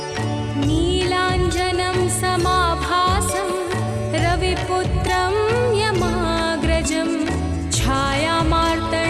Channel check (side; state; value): both; identical; correlation 1.00